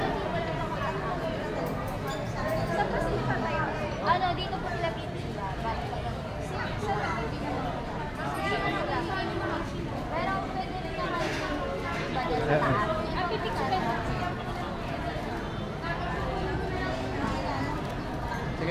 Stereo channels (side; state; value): both; identical; correlation 1.00